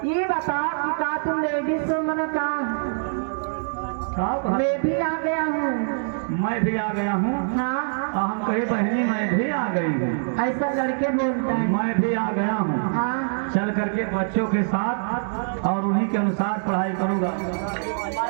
ये बता कि का तुम लेडीज हो मन का? मैं भी आ गया हूँ। मैं भी आ गया हूँ। हाँ हम कहे बहनी मैं भी आ गई हूँ। ऐसा लड़के बोलता है। मैं भी आ गया हूँ। हाँ चल करके बच्चों के साथ और उन्हीं के अनुसार पढ़ाई करूँगा।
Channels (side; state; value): left; silent; digital silence